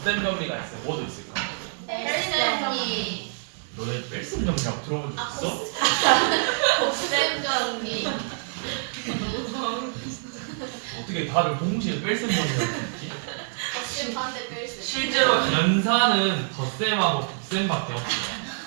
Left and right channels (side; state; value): left; silent; digital silence